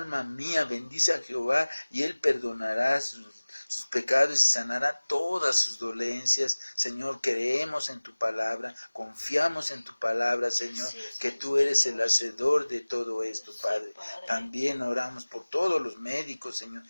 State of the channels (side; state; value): both; inverted; correlation -1.00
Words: mía, bendice a Jehová, y Él perdonará sus pecados y sanará todas sus dolencias. Señor, creemos en tu palabra, confiamos en tu palabra, Señor, que tú eres el hacedor de todo esto, Padre. También oramos por todos los médicos, Señor,